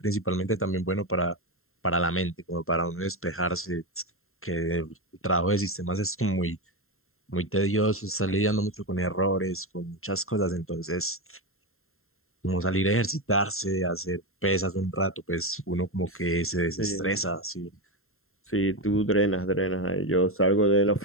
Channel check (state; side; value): late; right; 0.61 ms